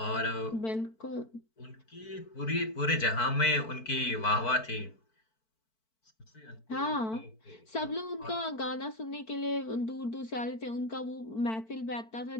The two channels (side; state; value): right; late; 4.5 ms